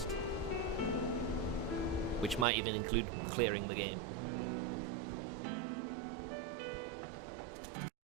which might even include clearing the game.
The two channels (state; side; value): drops out; left; at 2.5 s